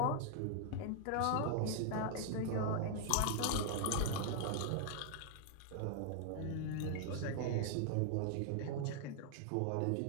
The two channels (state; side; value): different; both; correlation 0.00